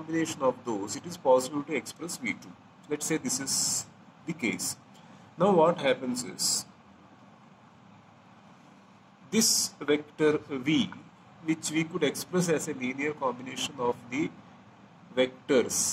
of those, it is possible to express V2. Let's say this is the case. Now what happens is, this vector V, which we could express as a linear combination of the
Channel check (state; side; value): identical; both; correlation 1.00